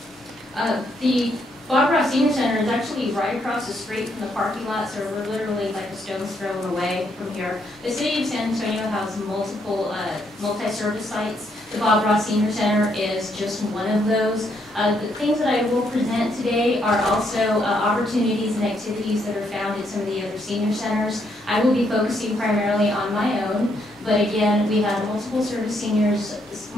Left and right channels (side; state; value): both; normal; correlation 0.74